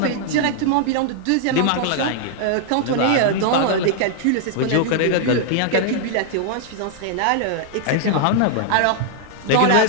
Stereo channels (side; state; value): both; different; correlation 0.00